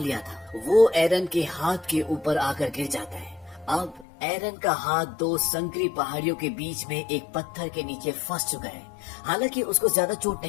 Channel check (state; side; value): drops out; right; at 4.0 s